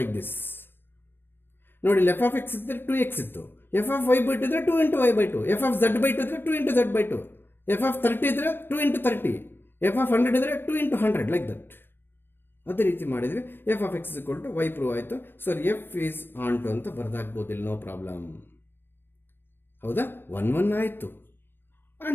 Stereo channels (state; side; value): late; right; 0.10 ms